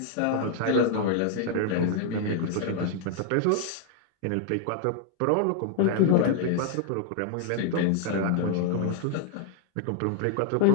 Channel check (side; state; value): both; different; correlation 0.00